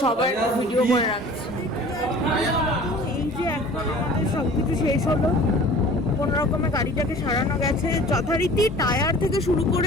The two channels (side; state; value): both; normal; correlation 0.45